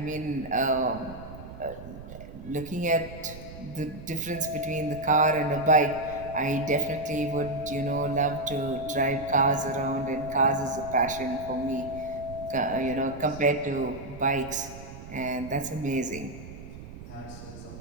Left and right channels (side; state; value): right; noise; rumble, 14 dB below the sound